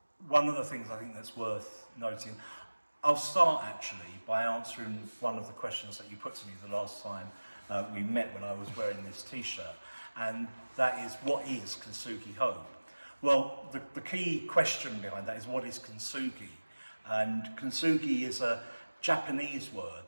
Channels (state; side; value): inverted; both; correlation -1.00